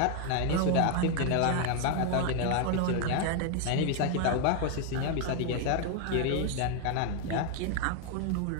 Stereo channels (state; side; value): different; both; correlation 0.01